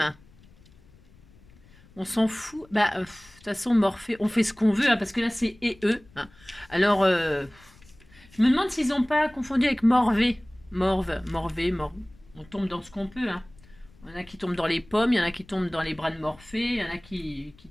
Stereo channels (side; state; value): left; noise; rumble, 26 dB below the sound